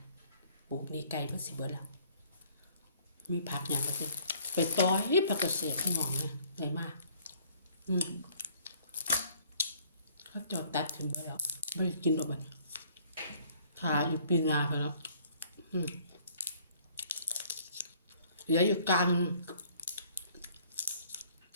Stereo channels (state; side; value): inverted; both; correlation -0.58